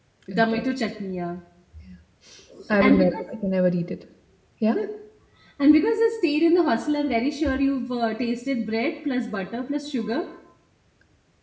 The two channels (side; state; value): both; identical; correlation 1.00